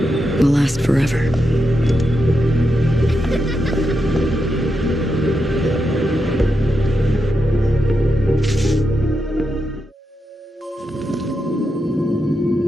will last forever.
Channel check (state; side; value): normal; both; correlation 0.86